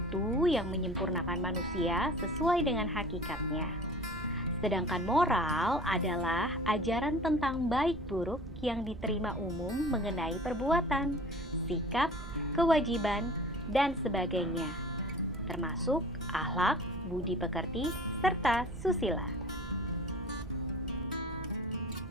yang menyempurnakan manusia sesuai dengan hakikatnya. Sedangkan moral adalah ajaran tentang baik buruk yang diterima umum mengenai perbuatan, sikap, kewajiban, dan sebagainya, termasuk akhlak, budi pekerti, serta susila.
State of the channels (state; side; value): noise; right; rumble, 13 dB below the sound